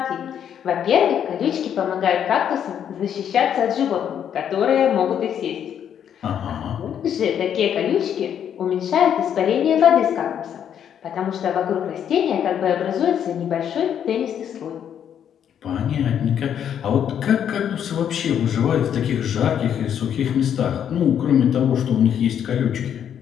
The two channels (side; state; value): right; quieter; 9.0 dB